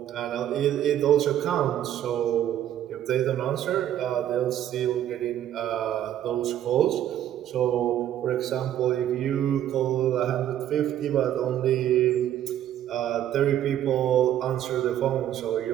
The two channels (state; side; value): quieter; left; 11.4 dB